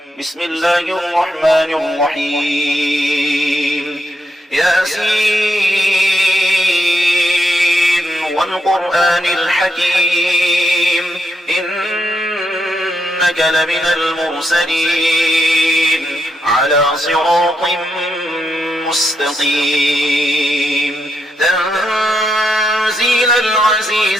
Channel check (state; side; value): normal; both; correlation 0.81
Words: بسم الله الرحمن الرحيم. ياسين والقرآن الحكيم إنك لمن المرسلين على صراط مستقيم تنزيل